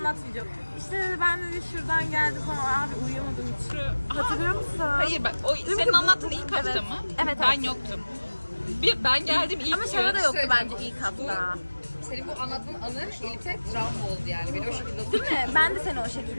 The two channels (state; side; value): inverted; both; correlation -1.00